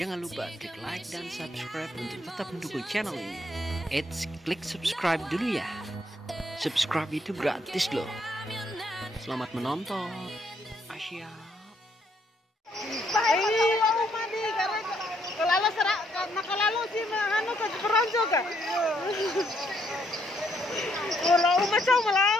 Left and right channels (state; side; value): normal; both; correlation 0.72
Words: lupa klik like dan subscribe untuk tetap mendukung channel ini. Klik subscribe dulu ya. Subscribe itu gratis loh. Selamat menonton. Asia. Kalau sih anu ke peronco ka. Kalau macam